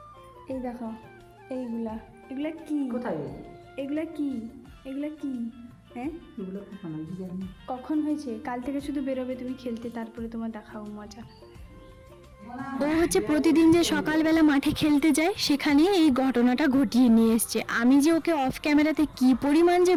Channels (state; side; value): identical; both; correlation 1.00